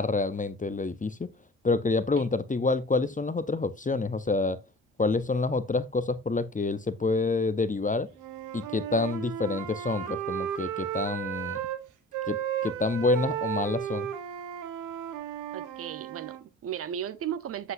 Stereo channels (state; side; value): normal; both; correlation 0.42